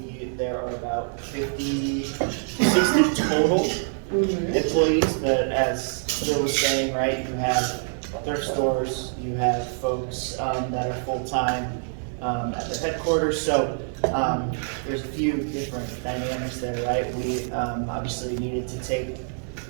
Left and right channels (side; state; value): left; silent; 61 dB below the other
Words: there are about 60 total employees, but as Bill was saying, right, you have thrift stores, you have folks that are full-time at the headquarters, so there's a few different dynamics there, right? We obviously needed to take